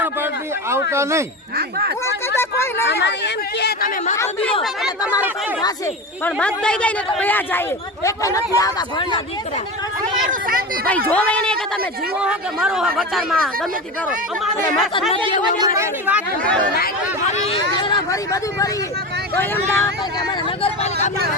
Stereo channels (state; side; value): normal; both; correlation 0.24